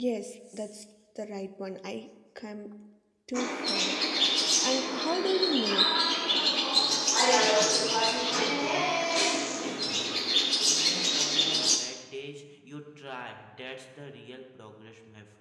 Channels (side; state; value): both; identical; correlation 1.00